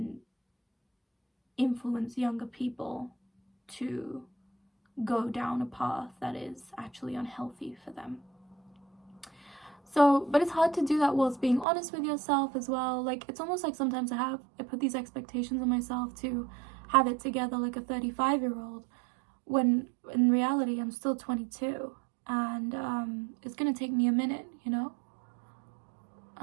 influence younger people to go down a path that is actually unhealthy for them. So, but it's hard to do that whilst being honest with yourself as well. Like, it's almost like sometimes I put these expectations on myself to have it together like a 35-year-old, when in reality I'm still 22, and it's gonna take me a minute, you know.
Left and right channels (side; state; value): left; drops out; at 11.7 s